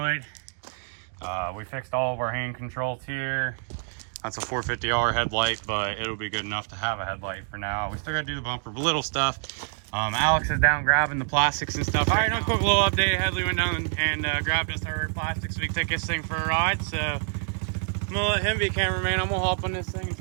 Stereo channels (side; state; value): left; silent; digital silence